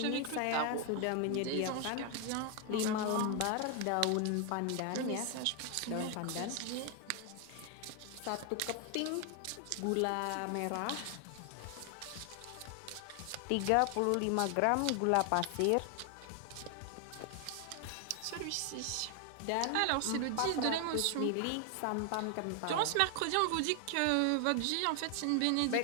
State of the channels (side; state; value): both; different; correlation 0.00